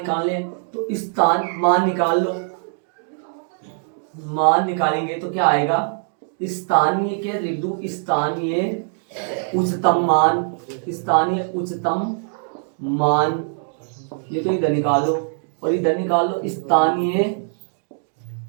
हैं। तो मान निकाल लो, मान निकालेंगे तो क्या आएगा? स्थानीय के लिख दूं, स्थानीय उच्चतम मान ये तो इधर निकाल दो और इधर निकाल लो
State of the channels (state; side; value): silent; left; 64 dB below the other